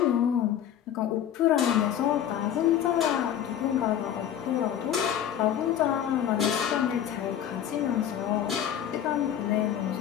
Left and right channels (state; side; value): quieter; right; 10.1 dB